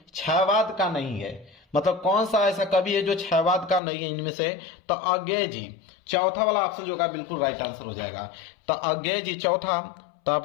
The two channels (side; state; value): right; drops out; at 3.8 s